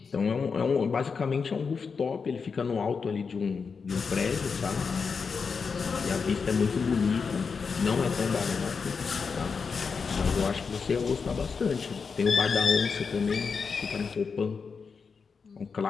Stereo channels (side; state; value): right; quieter; 5.4 dB